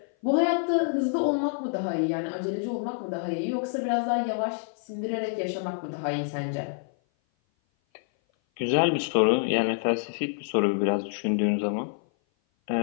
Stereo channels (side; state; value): right; silent; 56 dB below the other